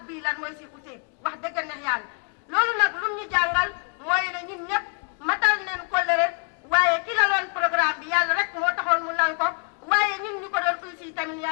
bii lan mooy si utee wax dëgg neex yàlla loolu nag lu ñu jàngal mooy ne ñun ñëpp matal neen kóllëre waaye ki la loon programme bi yàlla rek moo taxoon mu lal ko waaye ñun ñu ko doon uy si tamit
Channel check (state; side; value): quieter; right; 39.0 dB